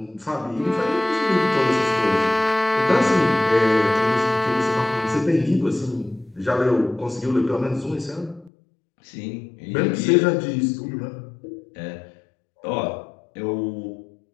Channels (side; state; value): right; drops out; at 8.5 s